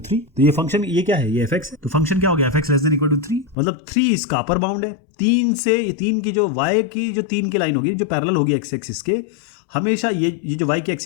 तो ये फंक्शन, ये क्या है, ये fx है, तो फंक्शन क्या हो गया, fx less than equal to 3, मतलब 3 इसका अपर बाउंड है। 3 की जो y की जो 3 की लाइन होगी जो पैरेलल होगी x एक्सिस के, हमेशा ये जो y की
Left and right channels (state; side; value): drops out; right; at 3.6 s